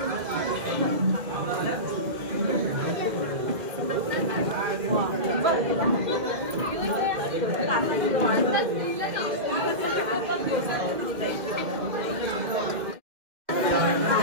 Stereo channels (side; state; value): left; late; 2.0 ms